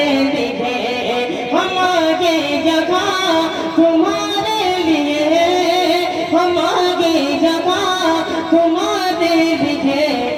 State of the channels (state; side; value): identical; both; correlation 1.00